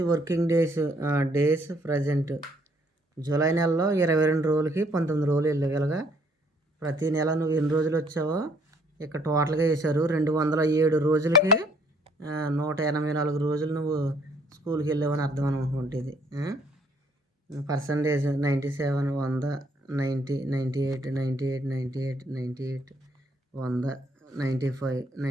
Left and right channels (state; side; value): normal; both; correlation 0.64